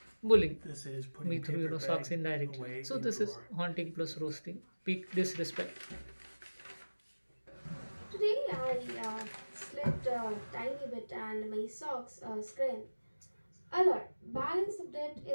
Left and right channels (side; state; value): both; inverted; correlation -1.00